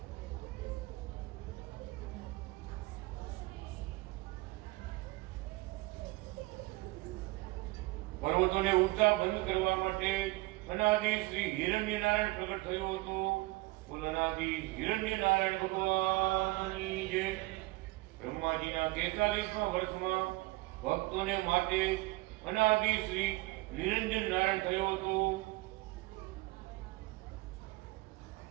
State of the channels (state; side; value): quieter; left; 21.8 dB